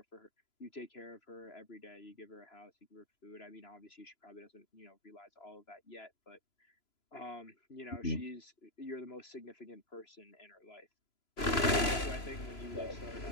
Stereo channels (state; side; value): late; right; 3.0 ms